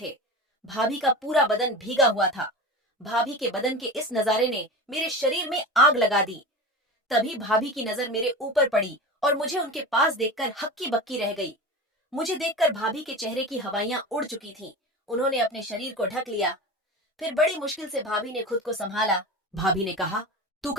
भाभी का पूरा बदन भीगा हुआ था। भाभी के बदन के इस नजारे ने मेरे शरीर में आग लगा दी। तभी भाभी की नजर मेरे ऊपर पड़ी और मुझे उनके पास देखकर हक्की बक्की रह गई। मुझे देखकर भाभी के चेहरे की हवाइयां उड़ चुकी थीं। उन्होंने अपने शरीर को ढक लिया। फिर बड़ी मुश्किल से भाभी ने खुद को संभाला। भाभी ने कहा, तू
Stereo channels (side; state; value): both; normal; correlation 0.29